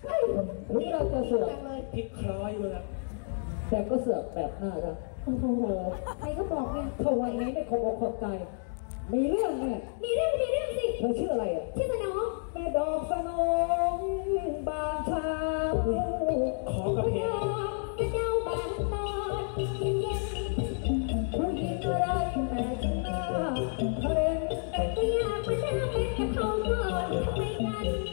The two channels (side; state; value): right; silent; digital silence